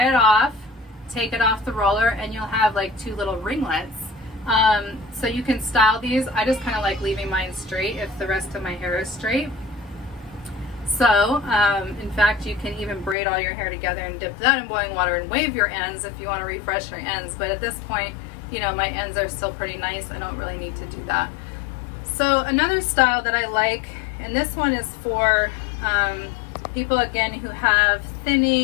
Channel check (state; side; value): drops out; right; at 13.2 s